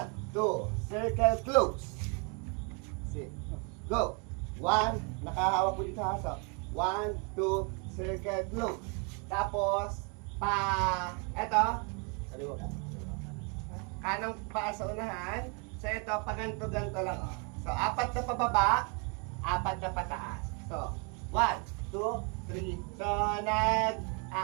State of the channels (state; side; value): quieter; left; 35.6 dB